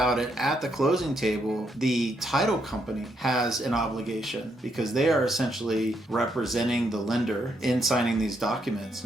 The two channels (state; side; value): normal; both; correlation 0.76